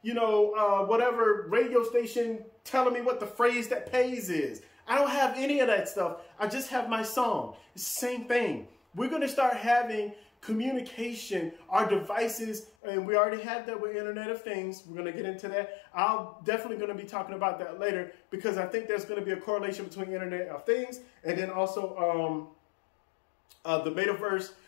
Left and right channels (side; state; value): right; drops out; at 12.7 s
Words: you know, whatever radio station telling me what the phrase that pays is. I don't have any of that stuff. I just have my song. It's the same thing. We're going to start having communication, our devices, and we already have that with Internet of Things. We're going to get into that. I'm definitely going to be talking about that later, because I think there's going to be a correlation between Internet of Things and then also the metaverse,